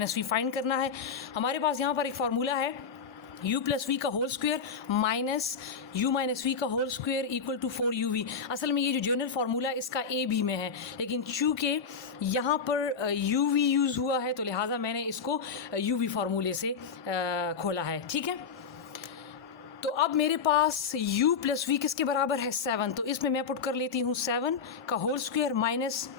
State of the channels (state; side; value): quieter; right; 5.9 dB